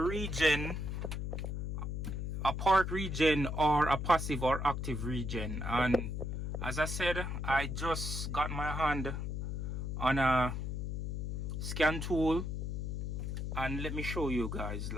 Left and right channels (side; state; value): left; noise; hum, 3 dB below the sound